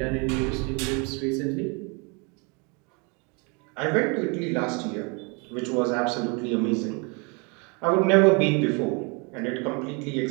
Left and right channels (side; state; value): left; quieter; 32.2 dB